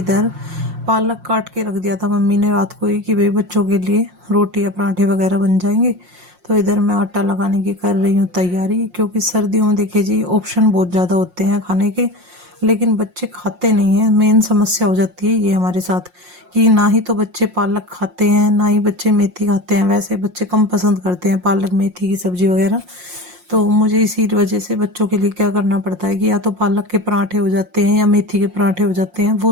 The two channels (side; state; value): left; late; 5.6 ms